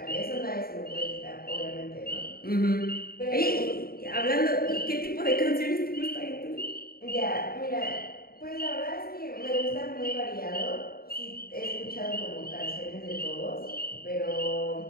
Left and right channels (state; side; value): late; right; 0.44 ms